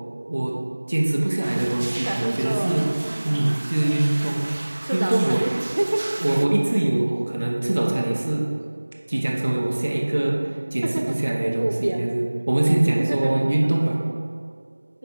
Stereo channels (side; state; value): both; inverted; correlation -1.00